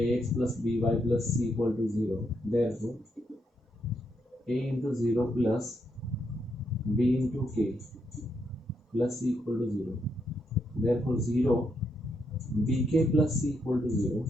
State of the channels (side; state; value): both; normal; correlation 0.79